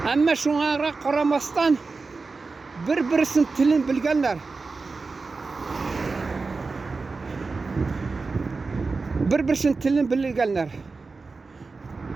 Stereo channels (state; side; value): quieter; left; 4.1 dB